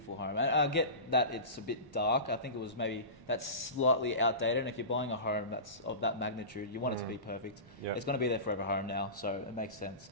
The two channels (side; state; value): left; late; 1.1 ms